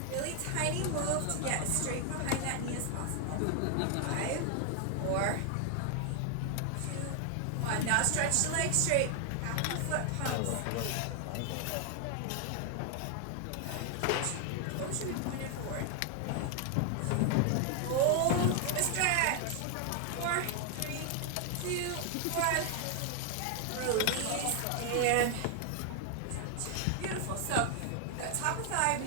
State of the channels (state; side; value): different; both; correlation 0.00